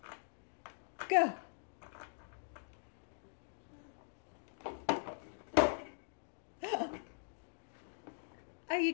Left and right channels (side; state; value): right; silent; digital silence